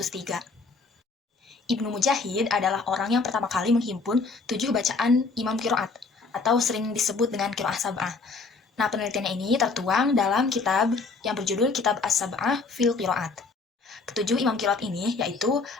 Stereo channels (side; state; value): right; quieter; 4.2 dB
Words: Ibnu Mujahid adalah orang yang pertama kali menghimpun 7 bacaan Imam Qiraat, atau sering disebut dengan Qiraat Sab'ah. Nah, penelitiannya ini tertuang dalam kitab yang berjudul Kitab As-Sab'ah fil Qiraat. Ketujuh imam qiraat ini yaitu